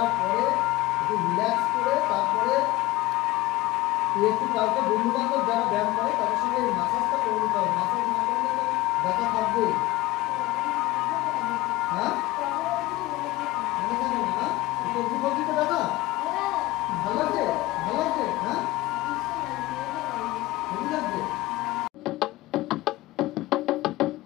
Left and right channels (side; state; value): right; quieter; 18.1 dB